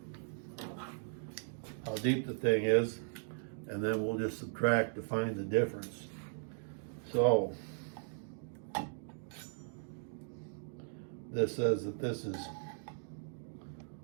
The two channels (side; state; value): left; silent; digital silence